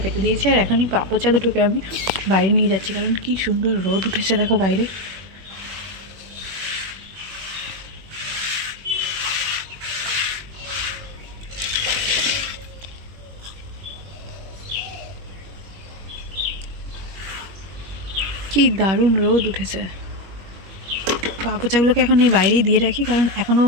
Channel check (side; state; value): left; late; 21 ms